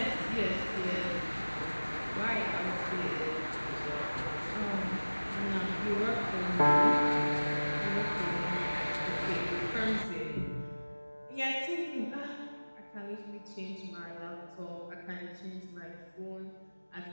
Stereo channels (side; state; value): both; inverted; correlation -1.00